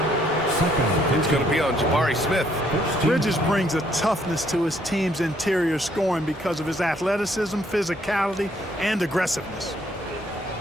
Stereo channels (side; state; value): both; normal; correlation 0.67